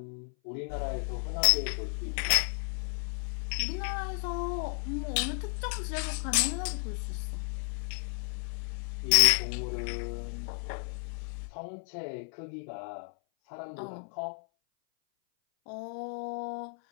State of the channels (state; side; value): silent; right; 56 dB below the other